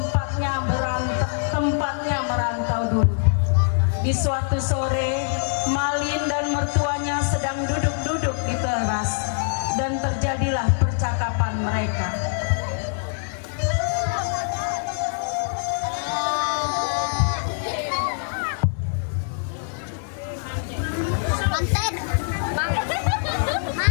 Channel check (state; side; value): silent; right; digital silence